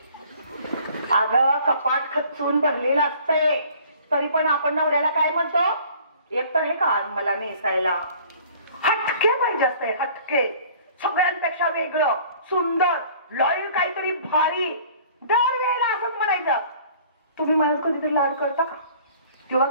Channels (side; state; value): both; inverted; correlation -0.51